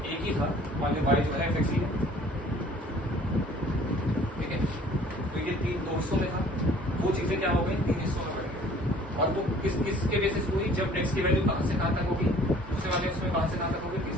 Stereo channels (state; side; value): normal; both; correlation 0.53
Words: एक ही था, मान लिया y जो है fx ही है, ठीक है, तो ये 2 हिस्सों में था, वो चीजें क्या हो गई 3 हिस्सों में बढ़ गई। और वो किसके बेसिस हुई, जब x की वैल्यू कहाँ से कहाँ तक होगी, दूसरे वाले उसमें कहाँ से कहाँ तक होगी,